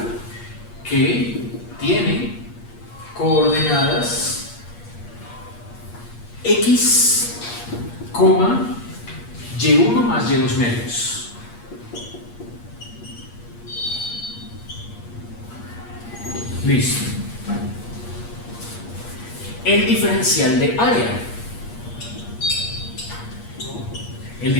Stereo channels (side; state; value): right; late; 8.5 ms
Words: que tiene coordenadas x, y1 más y2 medios. Listo. El diferencial de área. El